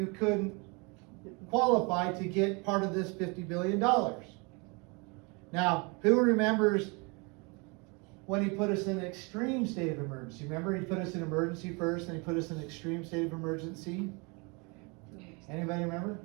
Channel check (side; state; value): left; quieter; 30.2 dB